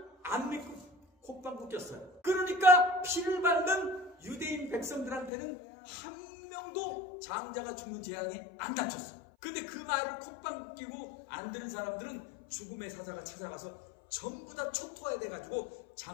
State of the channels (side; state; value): right; drops out; at 5.3 s